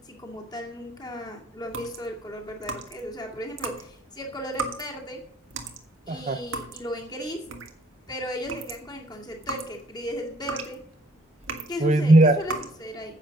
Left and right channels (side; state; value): both; normal; correlation 0.62